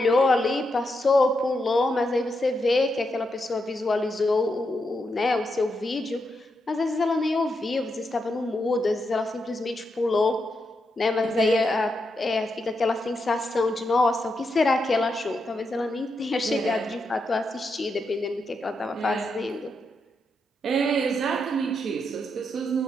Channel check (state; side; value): normal; both; correlation 0.84